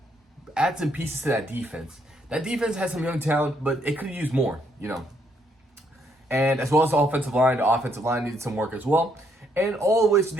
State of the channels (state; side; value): normal; both; correlation 0.72